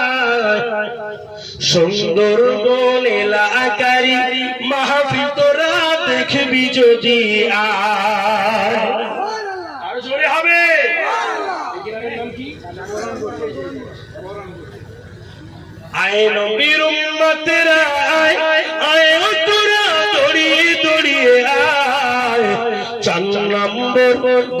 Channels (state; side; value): identical; both; correlation 1.00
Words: সুন্দরবন এলাকারি মাহফিল তোরা দেখবি যদি আর জোরে হবে। আয় নবীর উম্মতেরা আয় আয় তোরা দড়িয়ে দড়িয়ে আয় 4 নম্বর